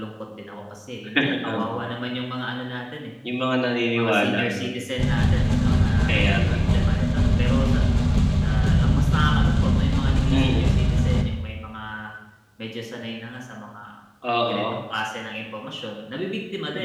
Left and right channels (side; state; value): both; identical; correlation 1.00